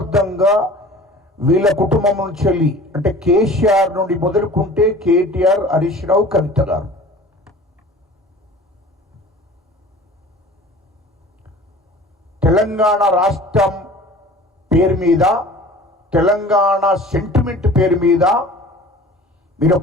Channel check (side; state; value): both; normal; correlation 0.43